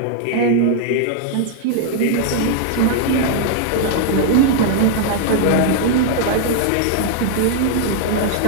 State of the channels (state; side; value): different; both; correlation 0.00